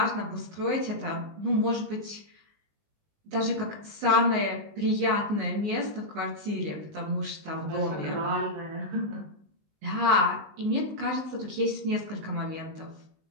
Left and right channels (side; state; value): left; late; 19 ms